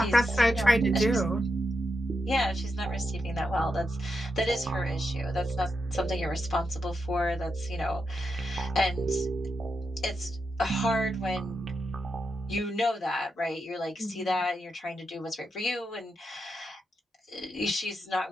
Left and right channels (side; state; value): both; normal; correlation 0.85